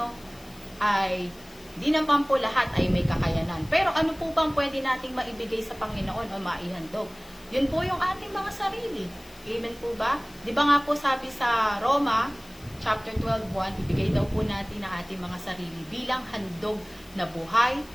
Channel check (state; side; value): noise; left; hiss, 24 dB below the sound